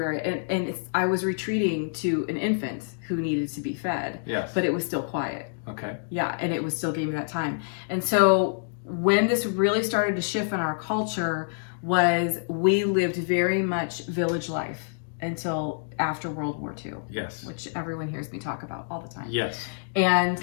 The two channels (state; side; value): silent; right; digital silence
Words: I was retreating to an infant who needed to be fed. Yes. But it was still quiet. Okay. Yeah. And it was still giving me that time. And so when this really started to shift in our culture was we lived very much village life until after World War II. Yes. Which everyone hears me talk about all the time. Yes. And